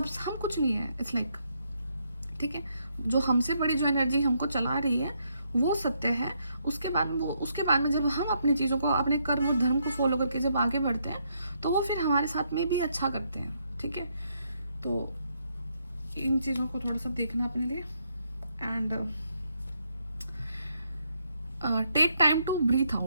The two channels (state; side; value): inverted; both; correlation -0.76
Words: हम कुछ नहीं है, इट्स लाइक, ठीक है। जो हमसे बड़ी जो एनर्जी हमको चला रही है वो सत्य है। उसके बाद में जब हम अपनी चीज़ों को, अपने कर्म और धर्म को फॉलो करके जब आगे बढ़ते हैं तो वो फिर हमारे साथ में भी अच्छा करते हैं, ठीक है। तो इन चीज़ों को थोड़ा सा देखना अपने लिए and take time to breathe